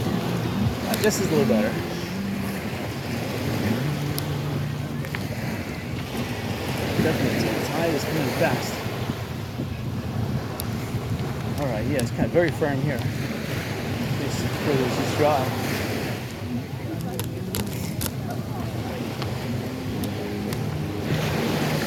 This is a little better. Definitely, the tide is coming fast. All right, yeah, it's kind of very firm here. It's just dry.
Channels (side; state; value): both; identical; correlation 1.00